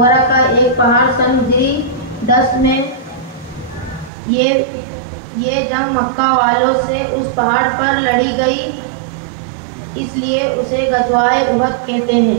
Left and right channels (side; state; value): left; drops out; at 4.1 s